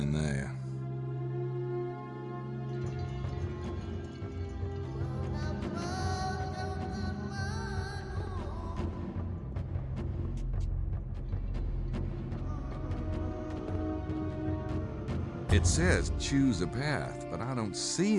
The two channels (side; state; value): both; identical; correlation 1.00